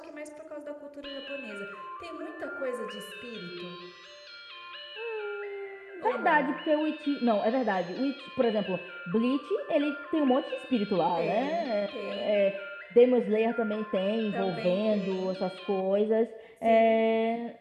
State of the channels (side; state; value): both; identical; correlation 1.00